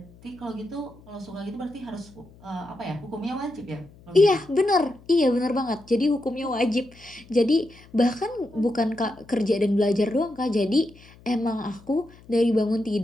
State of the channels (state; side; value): noise; left; hum, 24 dB below the sound